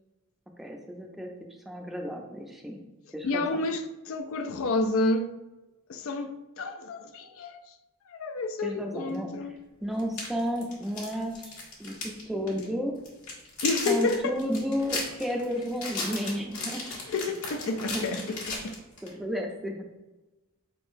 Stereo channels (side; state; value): both; normal; correlation 0.37